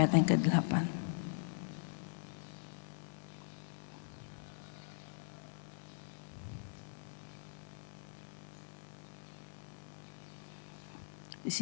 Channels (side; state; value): right; silent; digital silence